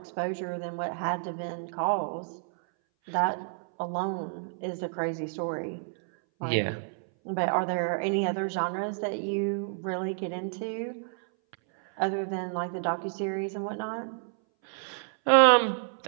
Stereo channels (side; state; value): left; silent; 58 dB below the other